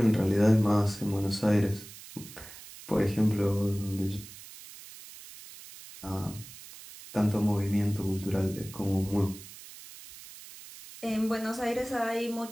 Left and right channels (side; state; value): right; noise; hiss, 16 dB below the sound